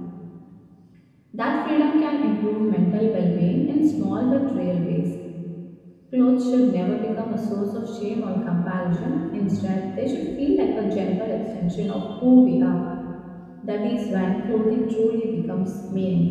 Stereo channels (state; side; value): identical; both; correlation 1.00